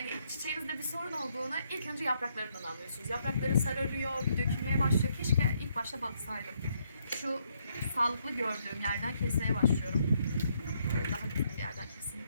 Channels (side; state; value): both; inverted; correlation -0.73